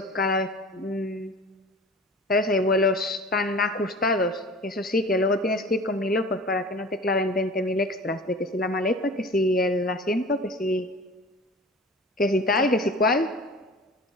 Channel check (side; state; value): both; normal; correlation 0.39